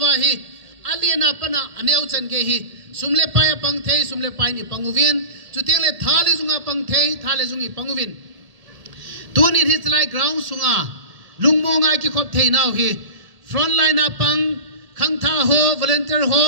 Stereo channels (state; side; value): late; left; 1.8 ms